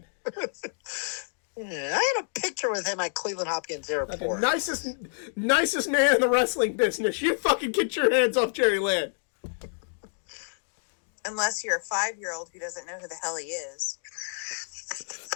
Yeah, I had a picture with him at Cleveland Hopkins Airport. Okay, nicest man in the wrestling business. You fucking get your hands off Jerry Lynn. Unless you're a 5-year-old who doesn't know who the hell he is.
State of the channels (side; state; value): right; silent; digital silence